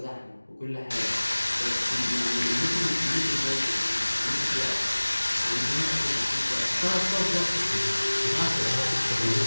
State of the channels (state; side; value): inverted; both; correlation -1.00